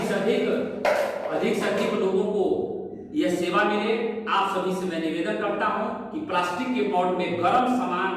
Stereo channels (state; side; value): identical; both; correlation 1.00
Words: लोगों को यह सेवा मिले। आप सभी से मैं निवेदन करता हूं कि प्लास्टिक के पॉट में गर्म